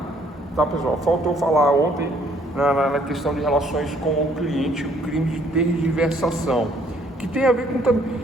Tá, pessoal? Faltou falar ontem na questão de relações com o cliente, o crime de tergiversação, que tem a ver com também,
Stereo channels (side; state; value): both; normal; correlation 0.64